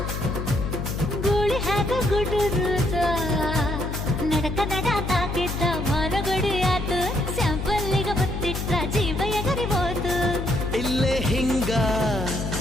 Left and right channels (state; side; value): noise; left; hum, 4 dB below the sound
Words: ಗೂಳಿ ಹಾಗ ಗುಡುರುದ ನಡಕ ನಡ ತಾಕಿದ್ದ ಮಾನಗಡಿ ಆತು ಸ್ಯಾಂಪಲ್ಲಿಗ ಮುತ್ತಿಟ್ಟ ಜೀವ ಎಗರಿಬೋದು ಇಲ್ಲೇ ಹಿಂಗ